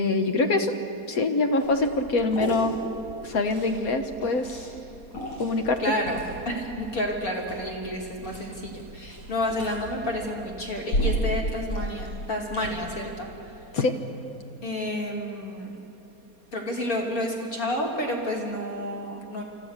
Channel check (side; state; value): right; late; 4.3 ms